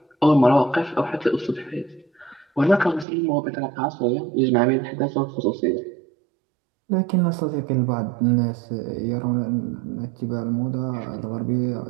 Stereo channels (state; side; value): drops out; left; at 3.1 s